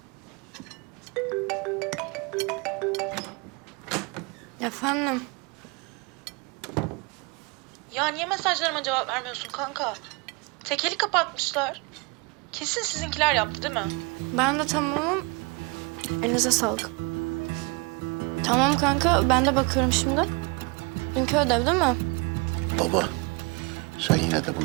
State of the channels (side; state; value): left; quieter; 28.3 dB